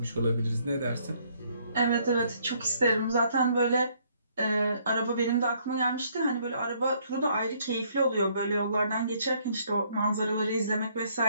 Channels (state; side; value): inverted; both; correlation -0.67